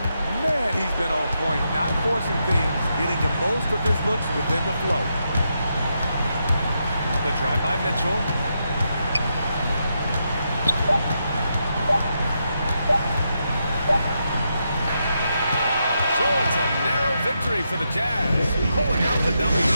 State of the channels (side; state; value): both; inverted; correlation -0.83